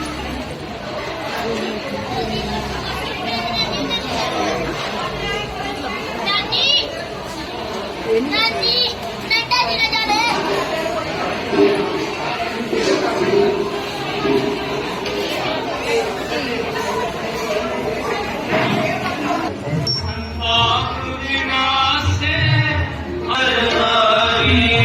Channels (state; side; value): identical; both; correlation 1.00